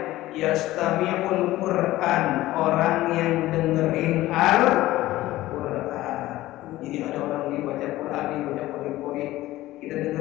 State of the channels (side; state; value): right; quieter; 16.4 dB